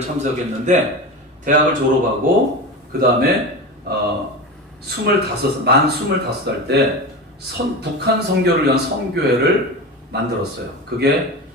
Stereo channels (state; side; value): normal; both; correlation 0.25